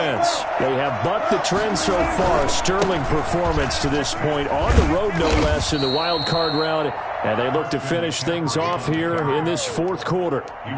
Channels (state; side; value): identical; both; correlation 1.00